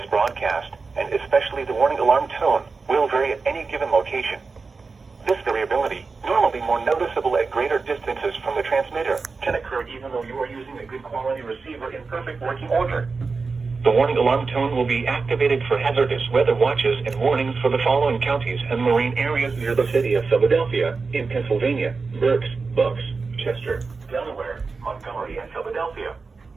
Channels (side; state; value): left; quieter; 4.4 dB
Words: broadcast, and especially the warning alarm tone, will vary at any given location. This variability, normally more noticeable at greater distances from the transmitter, can occur even though you are using a good quality receiver in perfect working order. The warning alarm tone will be activated for hazardous weather watches and warnings for the following counties and marine areas near the city of Philadelphia, in Pennsylvania, Berks, Bucks, Chester, Delaware, Montgomery, and Philadelphia.